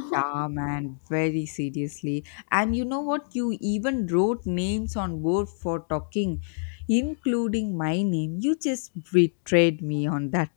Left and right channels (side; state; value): right; silent; digital silence